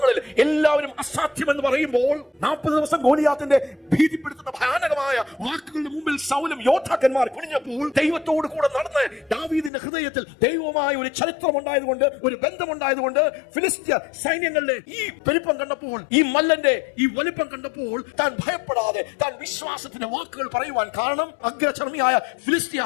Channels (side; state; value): right; drops out; at 9.7 s